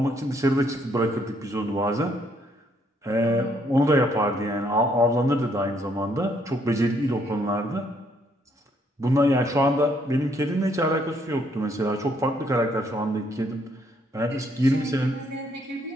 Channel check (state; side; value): normal; both; correlation 0.69